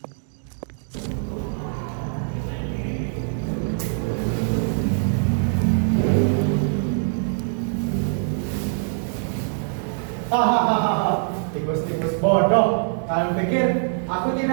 Hahaha, tikus-tikus bodoh. Kalian pikir aku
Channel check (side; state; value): left; silent; 63 dB below the other